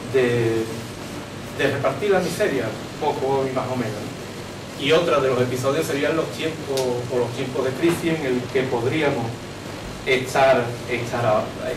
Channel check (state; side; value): identical; both; correlation 1.00